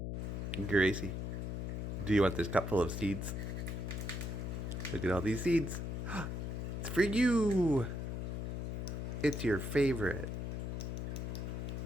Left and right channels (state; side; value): noise; left; hum, 3 dB below the sound